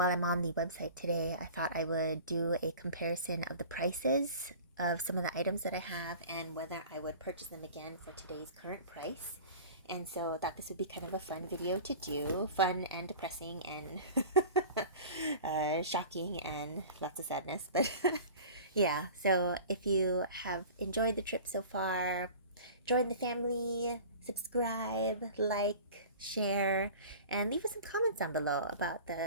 I'm on the website today, I thought I would do a comparison of the prices of some of the items that I have and whether I would purchase them again for today's current price. And so I thought this would be kind of a fun video to do, fun and depressing and shocking and lots of sadness. But yeah, so if you have enjoyed the trip so far, join the family, subscribe, like, share, and leave us some comments down below about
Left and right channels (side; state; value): both; inverted; correlation -0.40